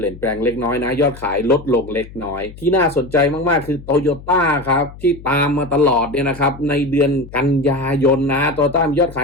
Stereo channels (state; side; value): noise; left; hum, 17 dB below the sound